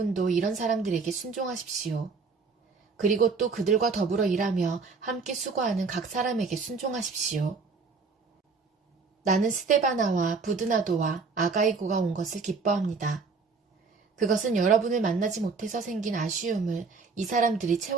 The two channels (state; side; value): quieter; left; 4.6 dB